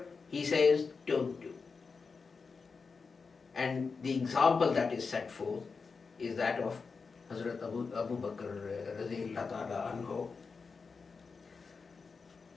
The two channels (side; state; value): right; quieter; 4.9 dB